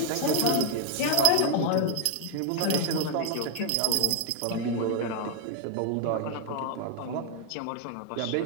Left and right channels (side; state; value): both; different; correlation 0.00